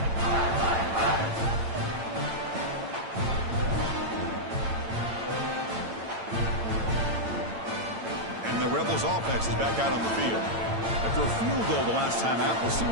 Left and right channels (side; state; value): left; late; 8.9 ms